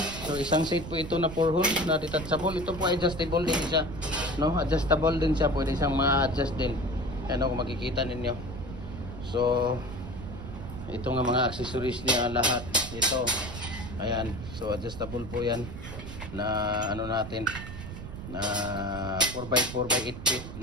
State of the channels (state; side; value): noise; right; rumble, 9 dB below the sound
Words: so isang set po ito na 4 holes na detachable. Ito po ay adjustable din siya, no? Adjustable din siya, pwede siyang ma-adjust din. Ayan, kung makikita ninyo. So ito nga mga accessories niya lahat. Ito. Ayan, so adjustable po yan na ano natin na 4x4 by 8 feet